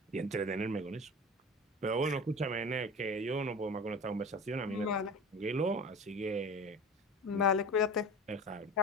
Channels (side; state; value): both; normal; correlation 0.35